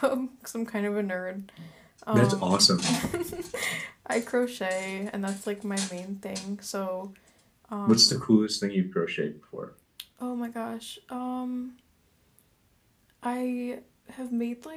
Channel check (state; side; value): identical; both; correlation 1.00